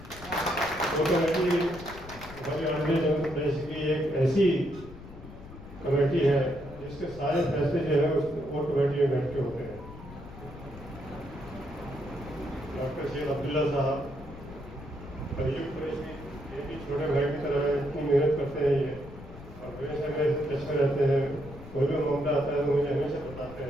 कोर कमेटी हमारी ऑर्डिनरी जनरल प्रेस की एक ऐसी कमेटी है जिसके सारे फैसले जो है उस कोर कमेटी में बैठ के होते हैं। डॉक्टर सैयद अब्दुल्ला साहब, अयूब कुरैशी, ये भी छोटे भाई की तरह इतनी मेहनत करते हैं ये, और हमेशा मेरे से टच में रहते हैं। कोई भी मामला आता है तो मुझे हमेशा बताते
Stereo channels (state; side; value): noise; left; rumble, 15 dB below the sound